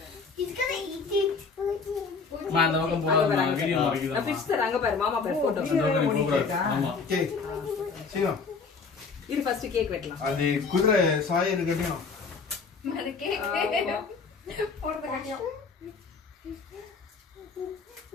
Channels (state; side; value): quieter; right; 4.9 dB